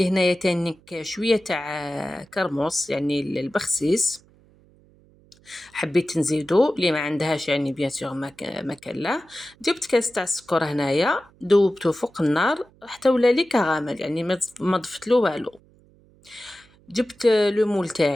هنايا تانيك شويه تاع كرموس يعني البخسيس، حبيت نزيدو اللي ما عندهاش يعني بيان سور ما كان لا. جبت كاس تاع السكر هنايا ذوبته فوق النار حتى ولا لي كراميل، يعني ما ضفت له والو. جبت لو مول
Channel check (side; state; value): right; noise; hum, 29 dB below the sound